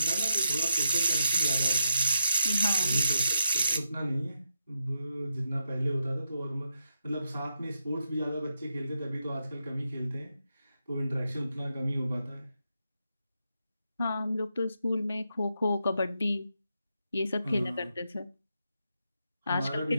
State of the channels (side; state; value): both; inverted; correlation -0.84